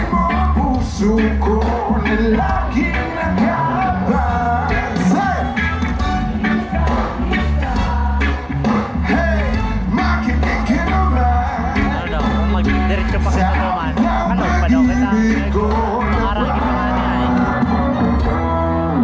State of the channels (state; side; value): identical; both; correlation 1.00